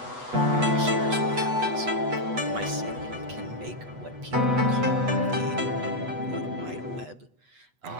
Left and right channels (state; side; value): late; left; 8.1 ms